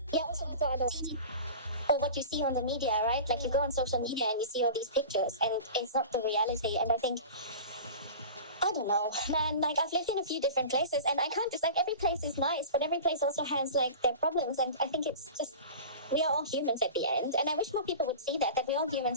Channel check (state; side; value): inverted; both; correlation -0.35